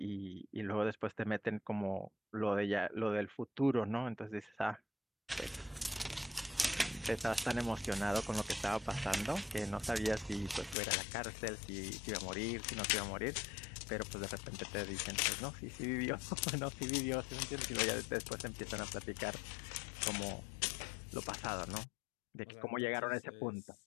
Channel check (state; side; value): drops out; right; at 10.8 s